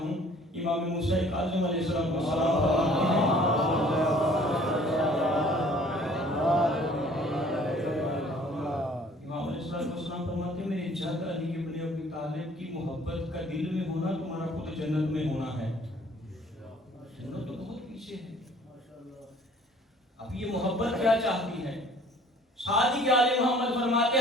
امام موسیٰ کاظم علیہ السلام فرماتے ہیں فرماتے ہیں میرے جد علی ابن ابی طالب کی محبت کا دل میں ہونا تمہارا خود جنت میں ہونا ہے۔ جنت تو بہت پیچھے ہے۔ اب یہ محبت کیا چاہتی ہے؟ صادق آل محمد فرماتے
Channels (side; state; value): both; normal; correlation 0.55